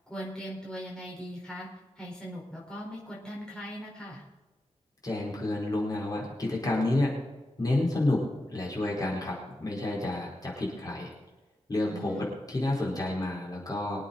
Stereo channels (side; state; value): both; normal; correlation 0.88